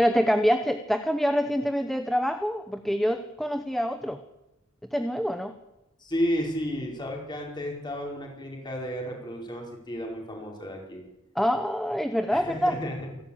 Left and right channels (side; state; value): both; normal; correlation 0.91